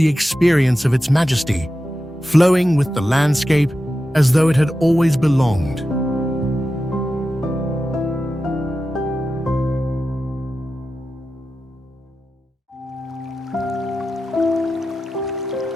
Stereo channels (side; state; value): both; normal; correlation 0.92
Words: experience of its majesty, flowing with the landscape as though it had always belonged.